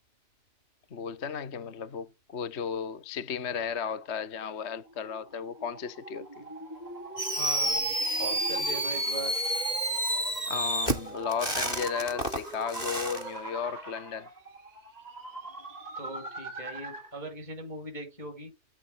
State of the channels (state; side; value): late; right; 2.6 ms